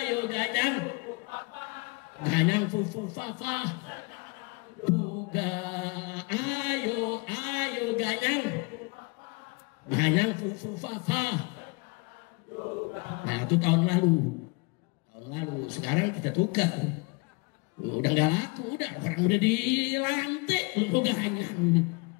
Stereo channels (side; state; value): right; quieter; 28.7 dB